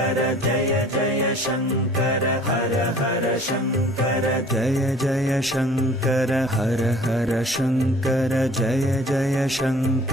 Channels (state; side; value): normal; both; correlation 0.51